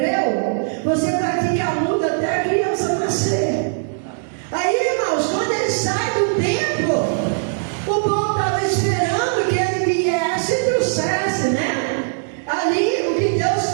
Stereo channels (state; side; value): silent; left; 66 dB below the other